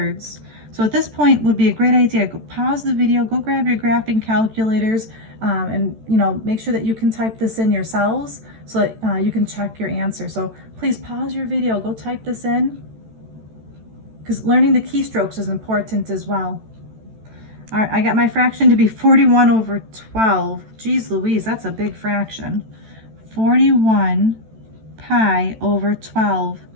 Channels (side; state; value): left; late; 14 ms